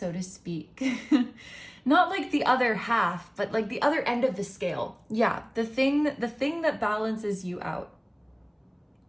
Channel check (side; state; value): both; identical; correlation 1.00